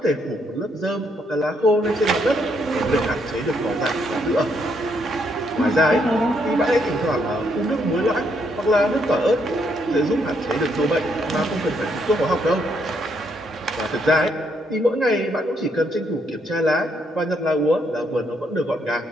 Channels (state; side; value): normal; both; correlation 0.74